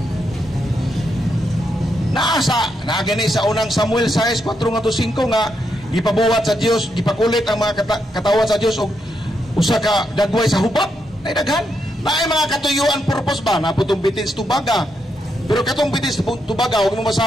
Naagani sa unang Samuel 6:4-5 nga gipabuhat sa Dios, gipakulit ang mga katawan sa Dios og usa ka dagway sa hubak. Nay daghan. Naay mga katuyuan purpose ba na putong bitin sa tubaga. Pero katong bitin sa tubaga og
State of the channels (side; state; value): both; normal; correlation 0.81